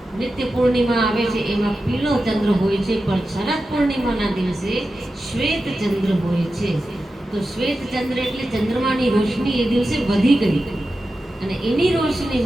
નિત્ય પૂર્ણિમા આવે છે એમાં પીળો ચંદ્ર હોય છે, પણ શરદ પૂર્ણિમાના દિવસે શ્વેત ચંદ્ર હોય છે. તો શ્વેત ચંદ્ર એટલે ચંદ્રમાની રોશની એ દિવસે વધી ગઈ, અને એની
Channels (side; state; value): both; normal; correlation 0.92